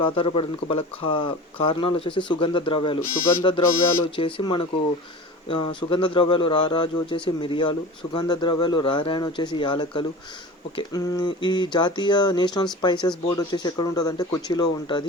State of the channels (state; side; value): normal; both; correlation 0.35